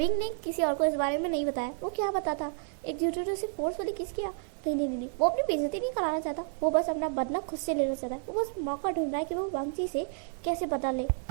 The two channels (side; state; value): left; silent; 57 dB below the other